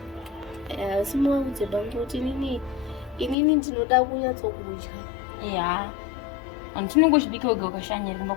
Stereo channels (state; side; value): drops out; right; at 3.4 s